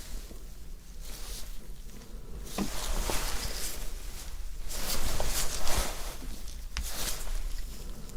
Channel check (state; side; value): identical; both; correlation 1.00